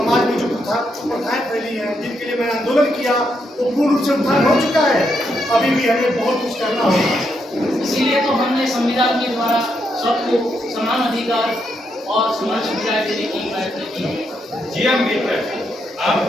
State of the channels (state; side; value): normal; both; correlation 0.79